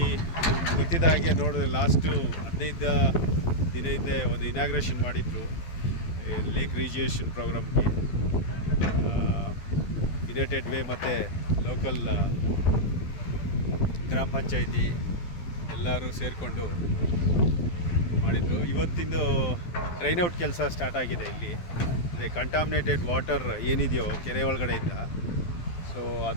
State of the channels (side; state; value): right; late; 12 ms